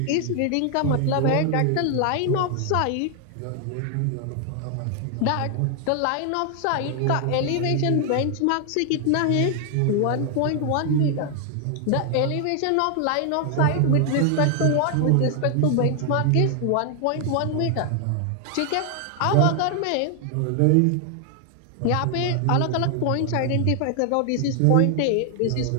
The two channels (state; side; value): different; both; correlation 0.00